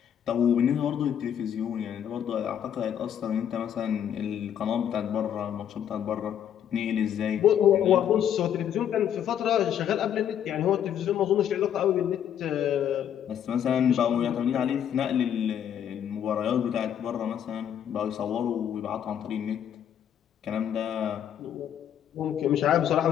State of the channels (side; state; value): right; quieter; 9.5 dB